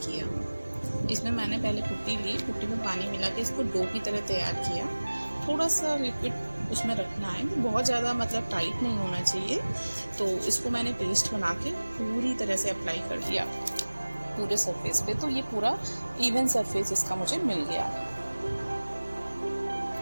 किया। इसमें मैंने पहले पुट्टी ली, पुट्टी में पानी मिला के इसको डो की तरह तैयार किया। थोड़ा सा लिक्विड उसमें रखना है, बहुत ज़्यादा मतलब टाइट नहीं होना चाहिए। तो इसको मैंने पेस्ट बना के पूरी तरह से अप्लाई कर दिया पूरे सरफेस पे। तो ये पूरा इवन सरफेस इसका मुझे मिल गया।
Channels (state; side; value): inverted; both; correlation -1.00